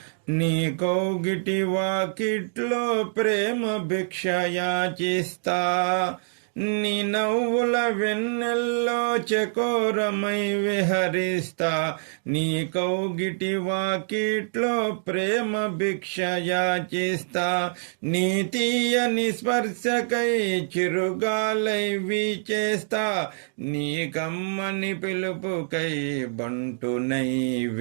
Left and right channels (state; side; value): silent; left; digital silence